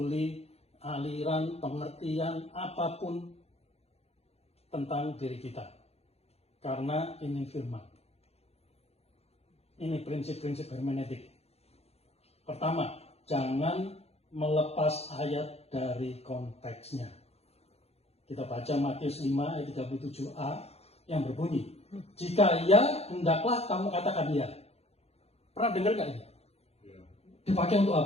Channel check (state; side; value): late; right; 0.30 ms